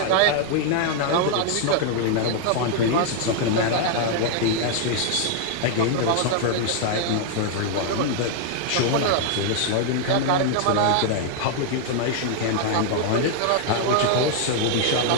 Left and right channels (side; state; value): both; different; correlation 0.00